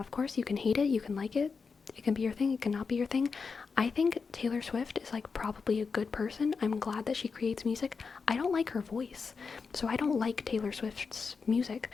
course you can hate it, you can like it, it can be your thing, it cannot be your thing. I think Taylor Swift is like probably a good person. I'm glad that she creates music. I don't like her voice, so I don't like Taylor Swift's music,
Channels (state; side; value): quieter; right; 5.1 dB